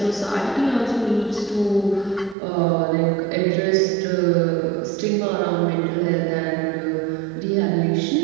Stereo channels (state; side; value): drops out; left; at 2.4 s